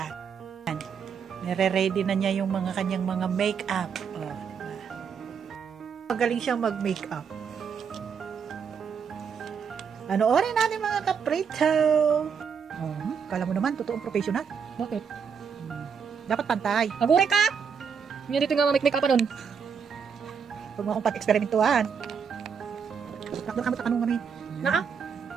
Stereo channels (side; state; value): left; quieter; 6.7 dB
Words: Nire-ready na niya yung mga kanyang mga make-up. Magaling siyang mag-make-up. Panoorin natin mga kaprito. Kala mo naman, totoong professional. Bakit? Dapat pantay. Agure ka! Hindi dito nga make-up pa nun. Huwag mo akong pat-eksperimentuhan. Takdo ka mo takanong kami. Naa?